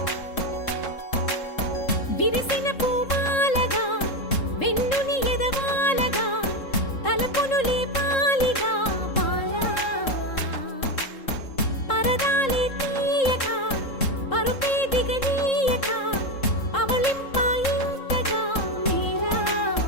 విరిసిన పూమాలగా వెన్నుని ఎదవాలగా తలపును లేపాలిగా పరదాలే తీయక పరుపే దిగనీయక అవలింపాయింతగా మేలా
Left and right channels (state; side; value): late; right; 3.7 ms